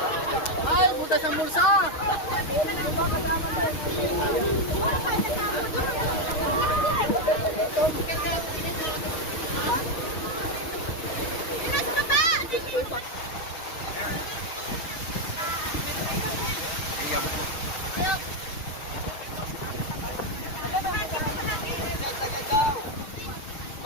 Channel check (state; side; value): late; right; 6.3 ms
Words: Ay, butas ang bulsa!